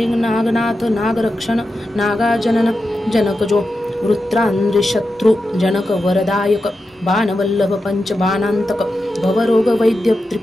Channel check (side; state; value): both; normal; correlation 0.90